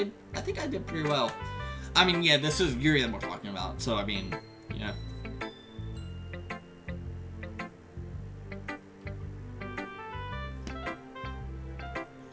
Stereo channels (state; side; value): identical; both; correlation 1.00